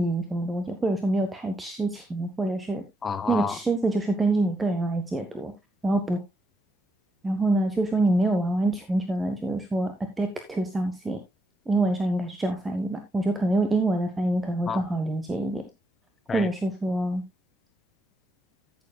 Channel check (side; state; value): both; normal; correlation 0.82